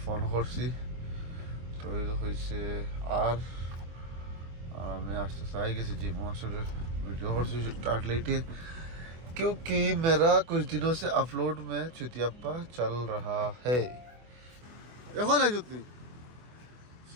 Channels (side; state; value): left; late; 24 ms